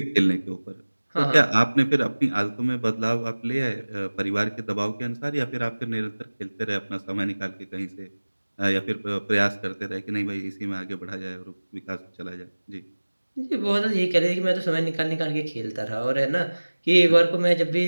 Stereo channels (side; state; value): both; inverted; correlation -1.00